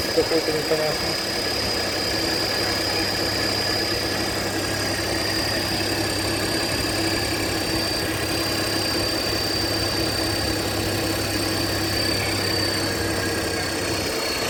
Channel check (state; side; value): identical; both; correlation 1.00